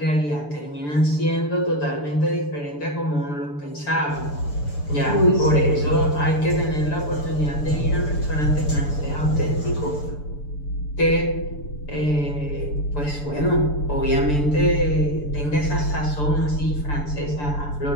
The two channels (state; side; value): late; right; 6.8 ms